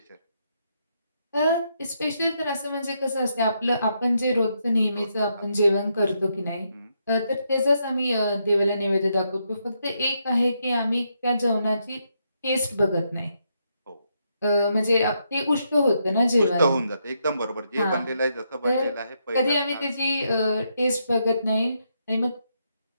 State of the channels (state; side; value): inverted; both; correlation -0.79